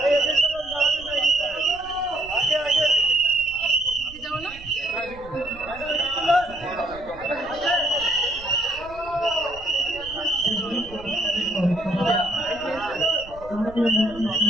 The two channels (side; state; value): right; noise; rumble, 18 dB below the sound